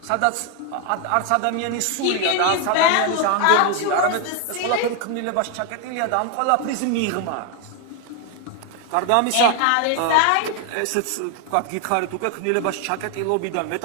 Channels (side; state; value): both; different; correlation 0.01